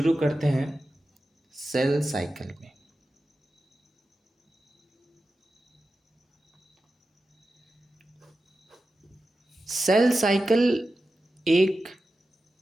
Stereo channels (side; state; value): both; normal; correlation 0.92